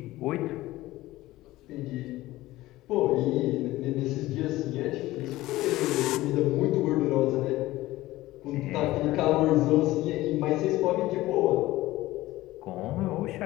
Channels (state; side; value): quieter; right; 17.3 dB